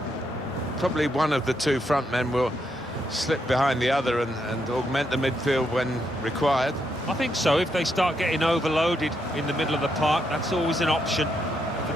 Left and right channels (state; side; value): normal; both; correlation 0.79